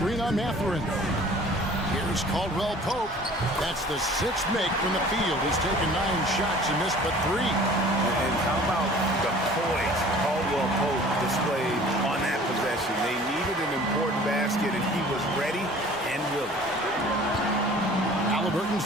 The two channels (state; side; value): normal; both; correlation 0.48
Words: on Matherin. Here's Caldwell Pope. That's the 6th make from the field. He's taken 9 shots and missed but 3. And how about the poise Caldwell Pope displayed on that possession? They needed an important basket, and he was ready and willing. Halliburton